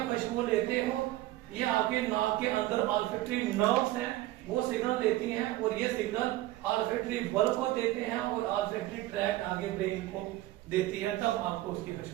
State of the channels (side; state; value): left; quieter; 16.5 dB